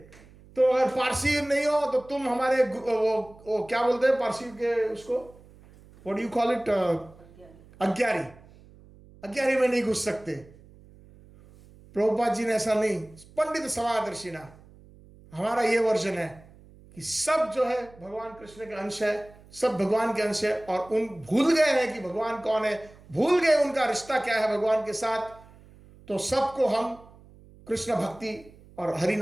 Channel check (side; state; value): right; noise; hum, 24 dB below the sound